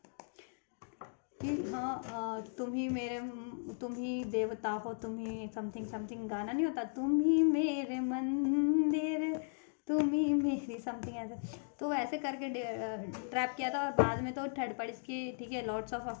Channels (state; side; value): silent; right; digital silence